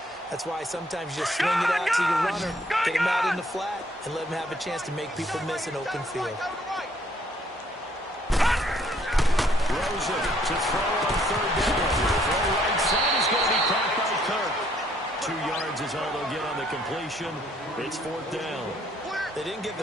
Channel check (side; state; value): both; normal; correlation 0.65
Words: That's why sometimes you just swing it out to your runner, get him out in the flat, and let him have a chance to make people miss an open field. Rosen to throw on 3rd down. Throw right side is going to be caught by Kirk. 2 yards is all they'll get on the completion. It's 4th down. They didn't get the